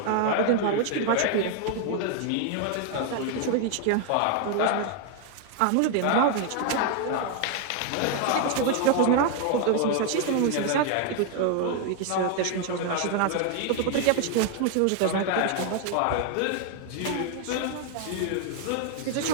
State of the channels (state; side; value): different; both; correlation 0.00